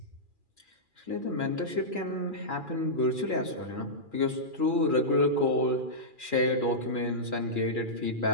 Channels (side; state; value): left; late; 2.4 ms